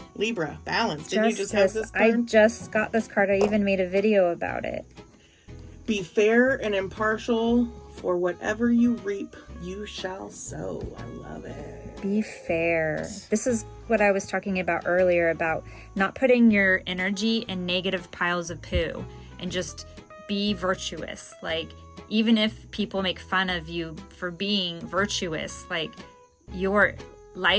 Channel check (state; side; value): identical; both; correlation 1.00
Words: Libra. Balance. Didn't you just have this card? I just got this card. I even made a video about it. Be fair and impartial. For whatever you reap, you shall sow. I love it. Be fair. This is what I was talking about earlier, about not putting your energy in negative piles of poo, and just be virtuous. Like, even if people make fun of you for being virtuous, like, your